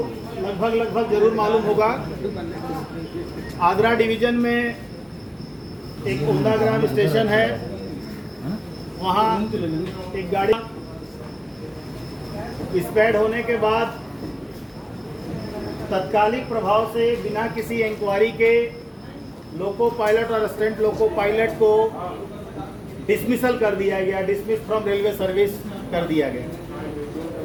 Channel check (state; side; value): identical; both; correlation 1.00